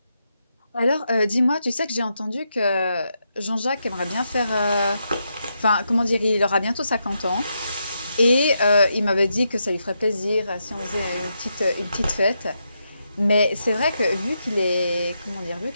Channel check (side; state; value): both; inverted; correlation -0.83